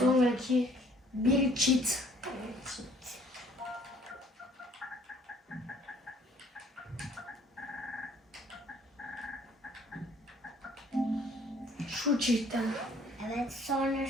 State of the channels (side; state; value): both; normal; correlation 0.58